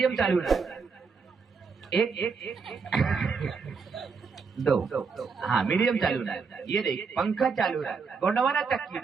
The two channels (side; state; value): left; quieter; 5.2 dB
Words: चालू रहा, एक दो, हाँ मीडियम चालू रहा। ये देख पंखा चालू रहा, गोंडवाना चक्की